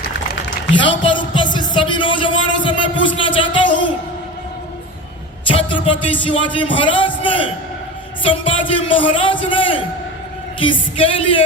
यहां पर उपस्थित सभी नौजवानों से मैं पूछना चाहता हूं, छत्रपति शिवाजी महाराज ने, संभाजी महाराज ने किसके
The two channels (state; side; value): normal; both; correlation 0.30